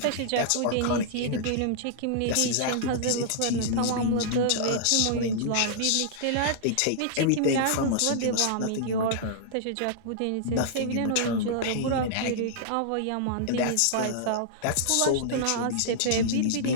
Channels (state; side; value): different; both; correlation -0.01